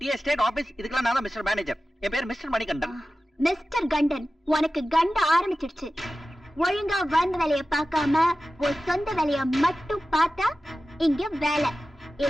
எஸ்டேட் ஆபீஸ், இதுக்கெல்லாம் நான் தான் மிஸ்டர் மேனேஜர். என் பேர் மிஸ்டர் மணிகண்டன். மிஸ்டர் கண்டன், உனக்கு கண்ட ஆரம்பிச்சிடுச்சு. ஒழுங்கா வந்த வேலைய பார்க்காம ஒரு சொந்த வேலைய மட்டும் பார்த்தா இங்க வேலை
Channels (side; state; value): both; normal; correlation 0.95